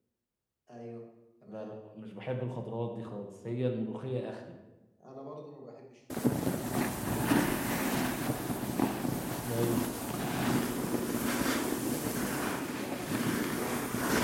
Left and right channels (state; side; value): identical; both; correlation 1.00